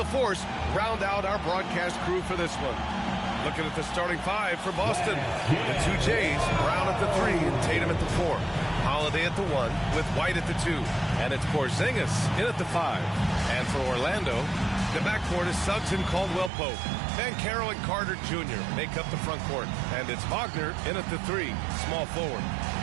round out our broadcast crew for this one. Looking at the starting five for Boston. The two Jays, Brown at the 3 and Tatum at the 4. Holiday at the 1 with White at the 2. And it's Porzingis in at the 5. And for Orlando, the backcourt is Suggs and Caldwell-Pope. Banchero and Carter Jr. make up the front court. And it's Wagner in at the 3, small forward.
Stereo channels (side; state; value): left; drops out; at 16.5 s